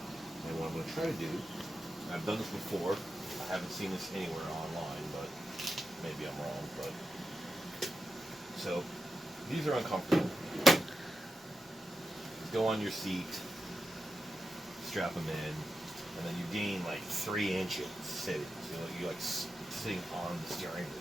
And what I'm going to try to do, I've done this before, I haven't seen this anywhere online, but maybe I'm wrong, but so these are uncomfortable. Go on your seat, strap them in, and then you gain like 3 inches sitting. So you're like sitting on the steering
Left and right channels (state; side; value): normal; both; correlation 0.90